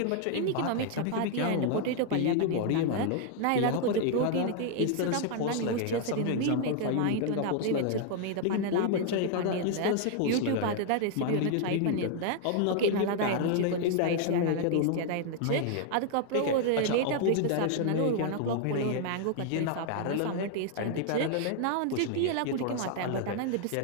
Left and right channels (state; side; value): different; both; correlation 0.00